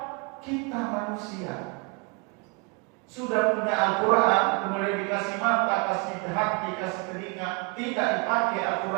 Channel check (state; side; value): quieter; left; 31.3 dB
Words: kita manusia sudah punya Al-Quran, kemudian dikasih mata, kasih hati, kasih telinga, tidak dipakai